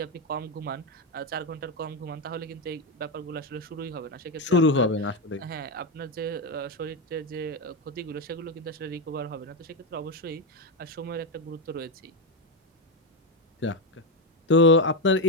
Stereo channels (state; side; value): normal; both; correlation 0.09